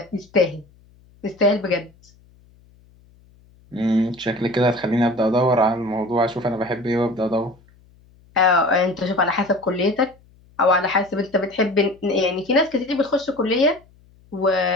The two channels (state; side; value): noise; left; hum, 29 dB below the sound